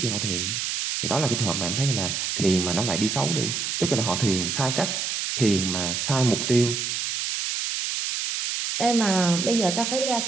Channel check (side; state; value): right; noise; hiss, 2 dB below the sound